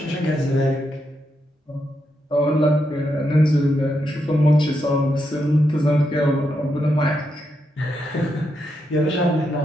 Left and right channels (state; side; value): normal; both; correlation 0.82